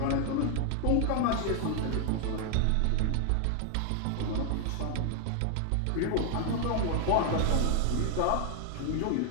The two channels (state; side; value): different; both; correlation 0.00